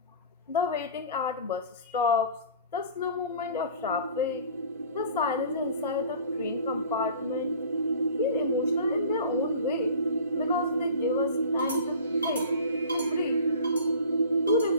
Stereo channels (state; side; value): inverted; both; correlation -0.44